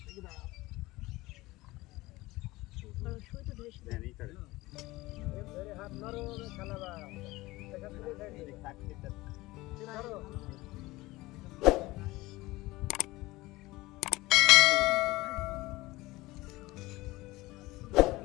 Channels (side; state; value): right; quieter; 19.9 dB